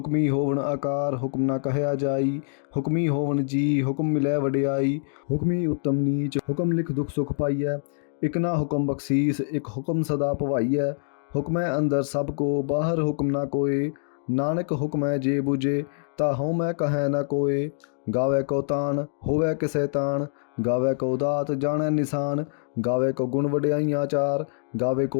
ਹੋਵਨ ਆਕਾਰ ਹੁਕਮ ਨਾ ਕਹਿਆ ਜਾਈ ਹੁਕਮੀ ਹੋਵਨ ਜੀ ਹੁਕਮ ਮਿਲੈ ਵਡਿਆਈ ਹੁਕਮੀ ਉੱਤਮ ਨੀਚ ਹੁਕਮ ਲਿਖ ਦੁਖ ਸੁਖ ਪਾਈਐ ਇੱਕ ਨਾ ਹੁਕਮ ਬਖਸ਼ੀਸ ਇੱਕ ਹੁਕਮ ਸਦਾ ਭਵਾਈਐ ਹੁਕਮੈ ਅੰਦਰ ਸਭ ਕੋ ਬਾਹਰ ਹੁਕਮ ਨਾ ਕੋਏ ਨਾਨਕ ਹੁਕਮੈ ਜੇ ਬੁਝੇ ਤਾ ਹਉ ਮੈਂ ਕਹੈ ਨਾ ਕੋਏ ਗਾਵੇ ਕੋ ਤਾਨ ਹੋਵੇ ਕਿਸੇ ਤਾਨ ਗਾਵੇ ਕੋ ਦਾਤ ਜਾਣੈ ਨਿਸ਼ਾਨ ਗਾਵੇ ਕੋ ਗੁਣ ਵਡਿਆਈਆਂ ਚਾਰ ਗਾਵੇ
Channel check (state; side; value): silent; right; digital silence